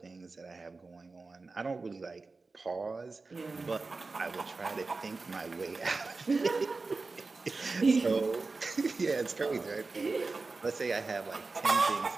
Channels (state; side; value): quieter; left; 3.8 dB